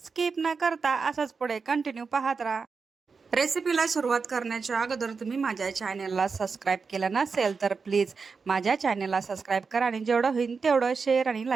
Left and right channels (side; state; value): left; quieter; 5.0 dB